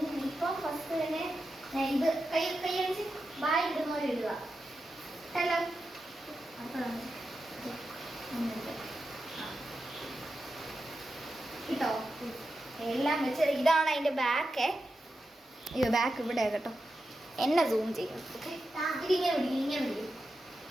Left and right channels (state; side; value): normal; both; correlation 0.90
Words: ഇപ്പൊ ഫസ്റ്റ് തന്നെ ഞാൻ ഇത് കൈയടിച്ച് ബായ് ഇടുന്ന പോലെ ഇടുക. ഹലോ കിട്ടോ? എല്ലാം വെച്ച് ഇതാണ് അതിന്റെ ബാക്ക്. അയ്യോ ബാക്ക് ഇവിടെ കേട്ടോ. എന്നെ സൂം ചെയ്യും. ഇതിങ്ങനെ